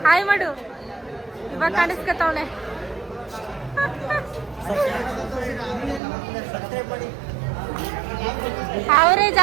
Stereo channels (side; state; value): left; drops out; at 6.0 s